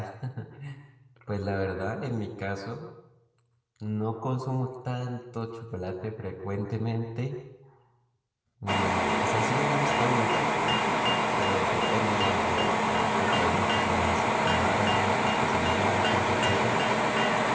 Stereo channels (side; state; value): both; identical; correlation 1.00